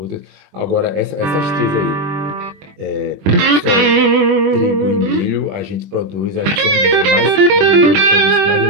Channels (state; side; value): late; left; 21 ms